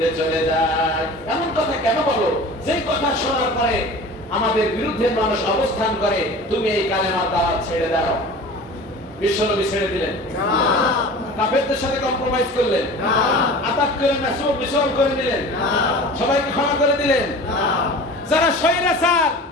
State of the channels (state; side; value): normal; both; correlation 0.38